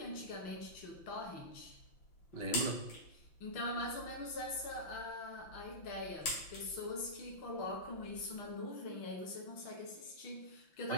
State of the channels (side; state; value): right; late; 5.9 ms